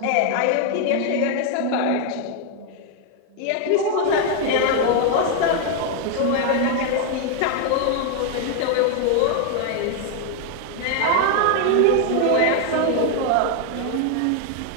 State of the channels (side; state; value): both; different; correlation 0.00